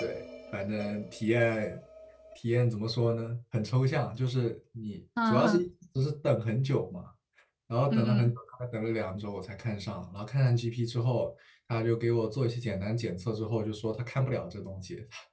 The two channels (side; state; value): both; identical; correlation 1.00